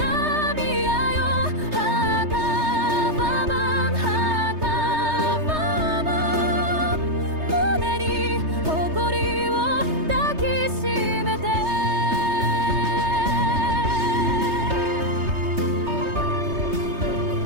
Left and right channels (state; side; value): late; left; 3.3 ms